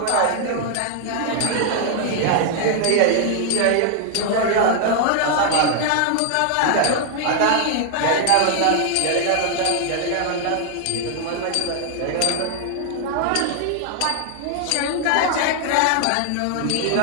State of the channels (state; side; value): different; both; correlation 0.00